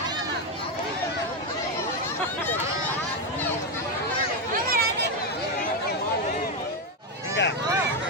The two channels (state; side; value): normal; both; correlation 0.08